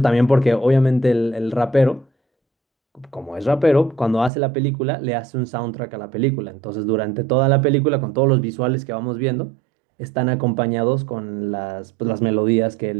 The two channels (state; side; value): drops out; left; at 4.3 s